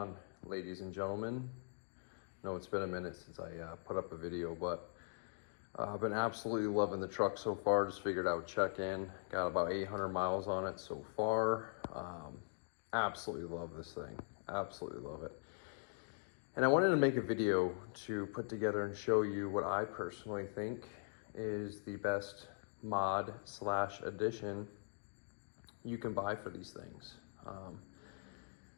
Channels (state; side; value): silent; right; digital silence